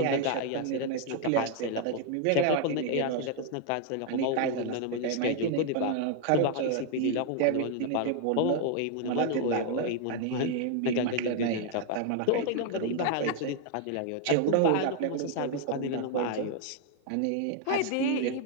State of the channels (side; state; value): both; different; correlation 0.00